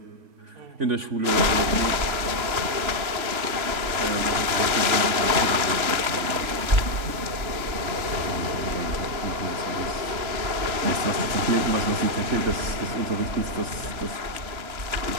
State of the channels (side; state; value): left; late; 3.0 ms